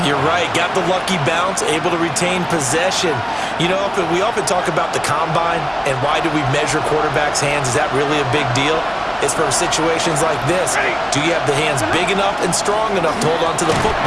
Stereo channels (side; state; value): both; identical; correlation 1.00